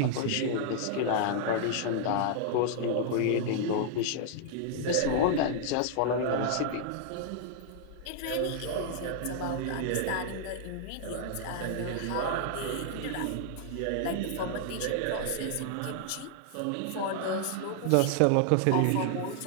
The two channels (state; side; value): different; both; correlation -0.01